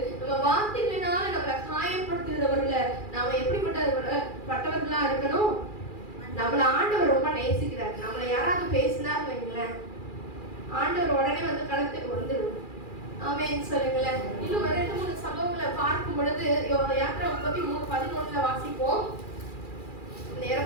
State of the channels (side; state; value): right; late; 2.4 ms